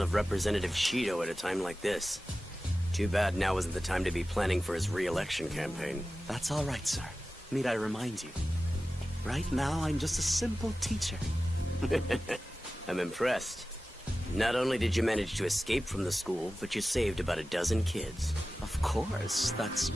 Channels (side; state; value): both; normal; correlation 0.95